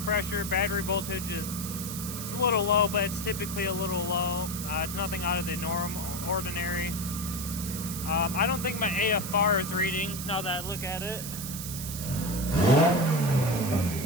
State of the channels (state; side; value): noise; right; hiss, 7 dB below the sound